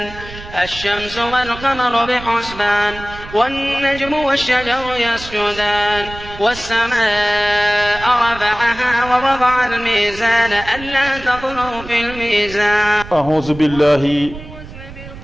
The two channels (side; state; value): right; noise; rumble, 15 dB below the sound